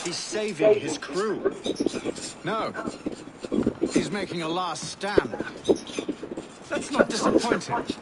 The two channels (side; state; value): both; identical; correlation 1.00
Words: He's saving his crew. No. He's making a last stand. Let's not disappoint him.